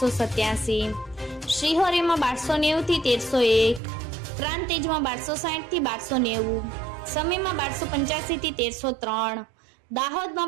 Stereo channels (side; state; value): left; drops out; at 3.8 s